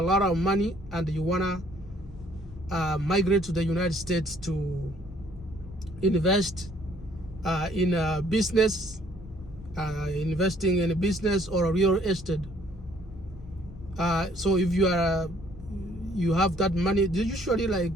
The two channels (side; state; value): both; normal; correlation 0.61